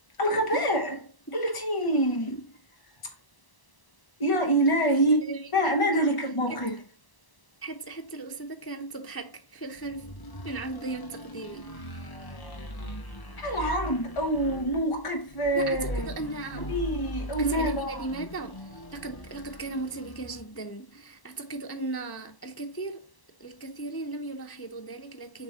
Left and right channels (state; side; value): late; right; 1.0 ms